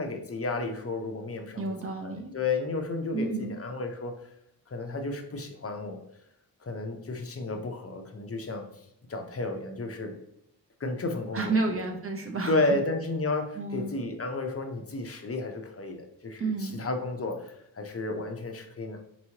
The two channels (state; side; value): normal; both; correlation 0.16